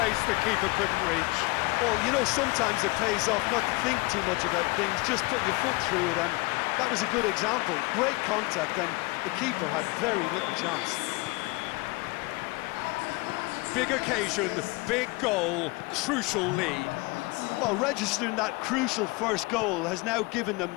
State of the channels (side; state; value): right; quieter; 24.7 dB